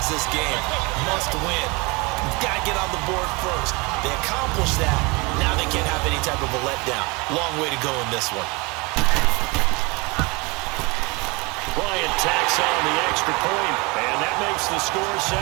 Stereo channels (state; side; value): quieter; left; 27.2 dB